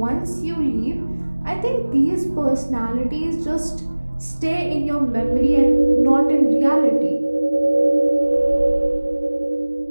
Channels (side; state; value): both; inverted; correlation -1.00